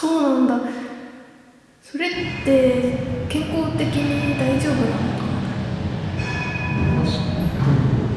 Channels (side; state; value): both; identical; correlation 1.00